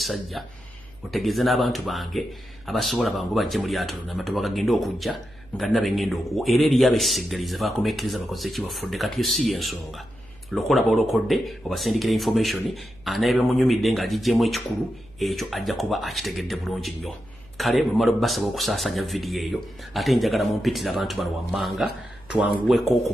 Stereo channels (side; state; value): right; noise; hum, 25 dB below the sound